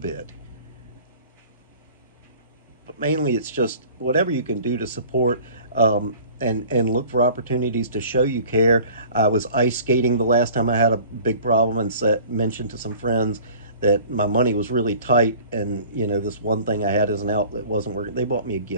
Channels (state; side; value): inverted; both; correlation -0.46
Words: But mainly it's just whatever you can do to support, and look for opportunities to show you care. I was ice skating the last time I had a big problem and mentioned to some friends that my money was really tight, and this one thing I had as an outlet wasn't working. They bought me a